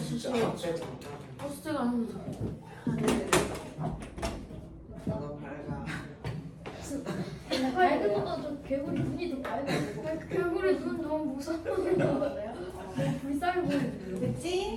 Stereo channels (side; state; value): both; identical; correlation 1.00